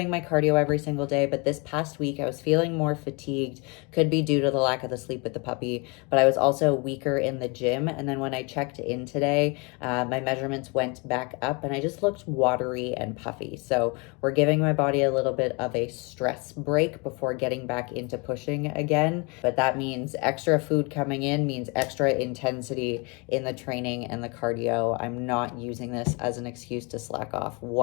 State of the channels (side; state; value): right; quieter; 30.2 dB